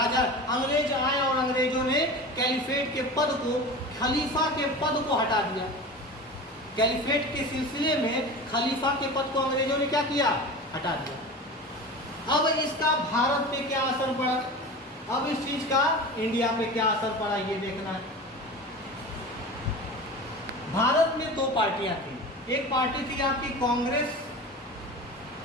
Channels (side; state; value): both; normal; correlation 0.32